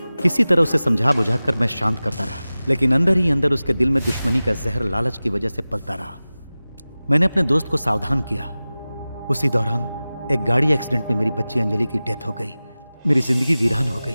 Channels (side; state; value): both; inverted; correlation -0.97